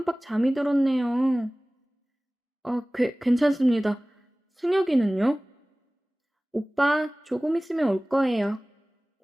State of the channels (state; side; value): normal; both; correlation 0.98